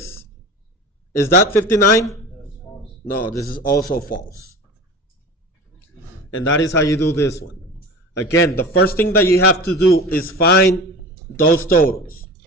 Is that 59? That's false. No, this is also false. And that is how you do this one. Again, the first thing that you have to do is find those totals.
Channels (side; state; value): both; normal; correlation 0.34